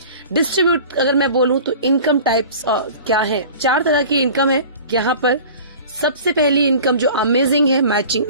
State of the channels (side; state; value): both; inverted; correlation -0.42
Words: डिस्ट्रीब्यूट अगर मैं बोलूं तो इनकम टाइप्स क्या है, 4 तरह की इनकम है यहाँ पर। सबसे पहली इनकम जो अमेजिंग है, मैचिंग